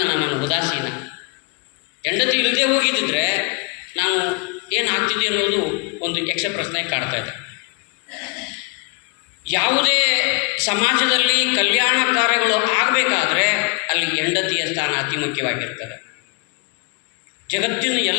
ನಾನು ಉದಾಸೀನ. ಹೆಂಡತಿ ಇಲ್ಲದೆ ಹೋಗಿದ್ದಿದ್ರೆ ನಾನು ಏನಾಗ್ತಿದೆ ಅನ್ನೋದು ಒಂದು ಯಕ್ಷ ಪ್ರಶ್ನೆ ಕಾಡ್ತಾ ಇದೆ. ಯಾವುದೇ ಸಮಾಜದಲ್ಲಿ ಕಲ್ಯಾಣ ಕಾರ್ಯಗಳು ಆಗಬೇಕಾದ್ರೆ ಅಲ್ಲಿ ಹೆಂಡತಿಯ ಸ್ಥಾನ ಅತಿ ಮುಖ್ಯವಾಗಿರ್ತದೆ. ಜಗತ್ತಿನ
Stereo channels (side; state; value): right; quieter; 33.0 dB